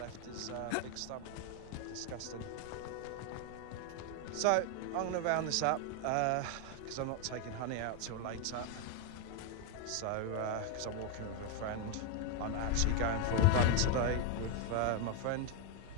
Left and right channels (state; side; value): different; both; correlation 0.01